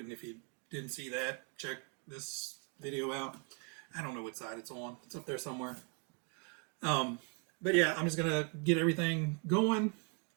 if you didn't see that, check this video out. I don't know what side it's on. It's up there somewhere. But yeah, I'm just going to get everything going.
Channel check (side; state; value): left; quieter; 37.0 dB